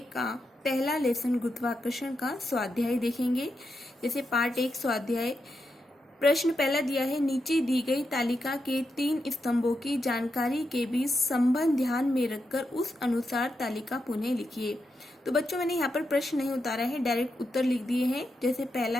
का पहला लेसन गुरुत्वाकर्षण का स्वाध्याय देखेंगे। जैसे पार्ट 1 स्वाध्याय प्रश्न पहला दिया है, नीचे दी गई तालिका के 3 स्तंभों की जानकारी के बीच संबंध ध्यान में रखकर उस अनुसार तालिका पुनः लिखिए। तो बच्चों मैंने यहाँ पर प्रश्न नहीं उतारा है, डायरेक्ट उत्तर लिख दिए हैं। जैसे पहला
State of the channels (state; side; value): normal; both; correlation 0.86